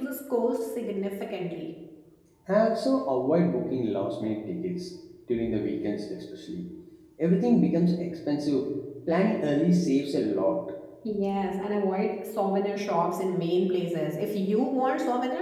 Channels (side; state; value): both; identical; correlation 1.00